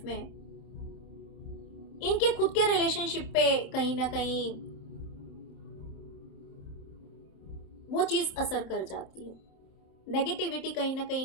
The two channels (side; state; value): right; late; 27 ms